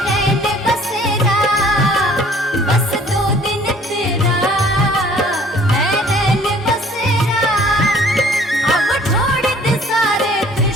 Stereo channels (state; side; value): normal; both; correlation 0.54